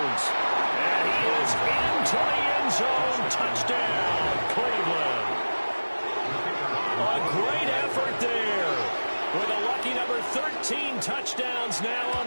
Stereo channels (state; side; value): inverted; both; correlation -1.00